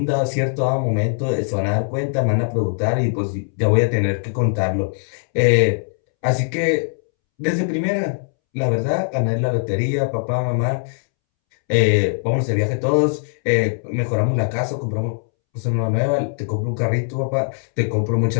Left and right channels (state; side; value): silent; right; 65 dB below the other